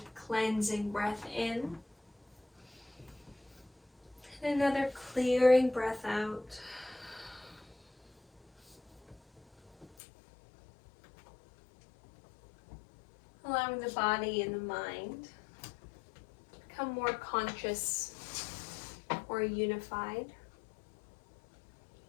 cleansing breath in. And another clearing breath out. Allowing the body and the mind to become more conscious or unified.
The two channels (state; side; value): drops out; right; at 10.0 s